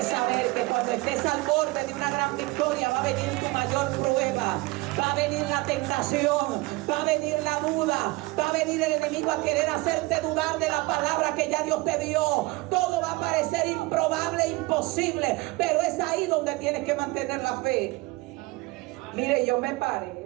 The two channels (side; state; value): left; quieter; 22.5 dB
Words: saber que cuando estés al borde de una gran victoria va a venir tu mayor prueba, va a venir la tentación, va a venir la duda, va a venir el enemigo a querer hacerte dudar de la palabra que ya Dios te dio. Todo va a parecer improbable, imposible, pero es ahí donde tienes que mantener la fe. Mire, yo me